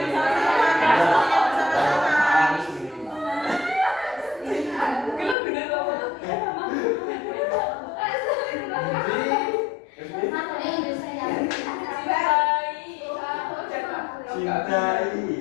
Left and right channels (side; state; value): right; drops out; at 5.4 s